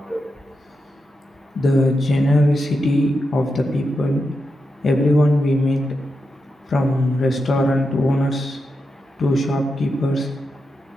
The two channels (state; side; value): normal; both; correlation 0.87